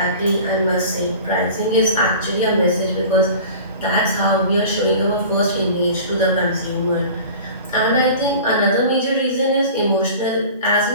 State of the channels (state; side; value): inverted; both; correlation -0.40